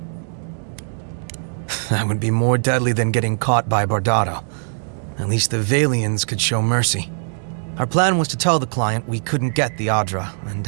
That would be more deadly than getting caught by Bardado. At least the Valians could show mercy. Our plan was to tell the client we couldn't get the Adra and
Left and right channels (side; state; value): left; silent; digital silence